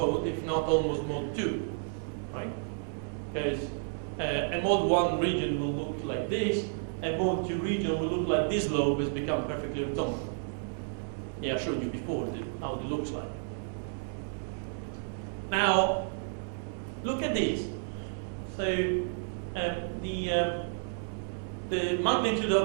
if not almost mode 2. Right? Because a mode 1 region will look like this, a mode 2 region will look like this lobe has become perfectly orthogonal. Yeah, I showed you before how it looks like. Now, look at this. So, the magnitude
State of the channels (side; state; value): left; silent; 57 dB below the other